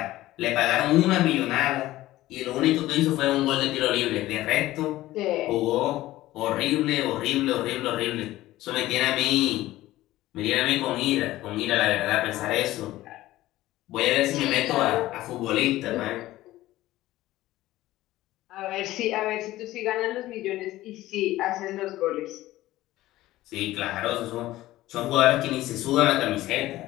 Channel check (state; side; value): quieter; right; 16.1 dB